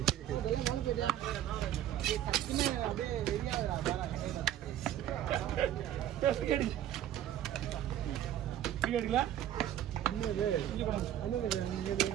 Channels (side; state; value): left; quieter; 11.7 dB